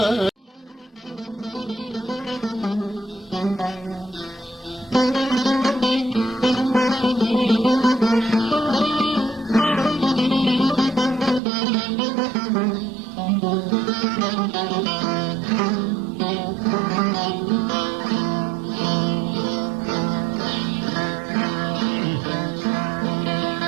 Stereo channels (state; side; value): drops out; left; at 11.4 s